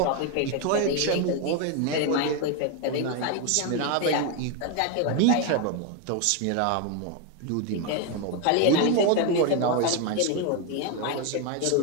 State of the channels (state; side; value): different; both; correlation 0.02